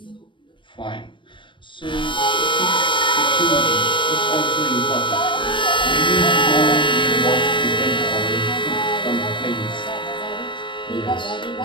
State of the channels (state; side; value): late; right; 0.24 ms